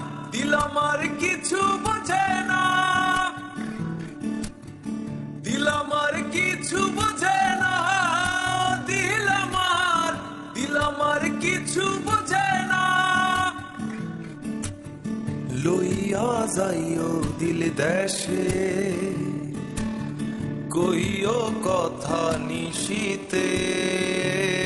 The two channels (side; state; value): both; identical; correlation 1.00